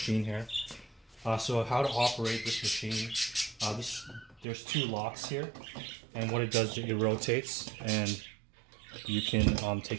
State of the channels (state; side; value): drops out; left; at 4.5 s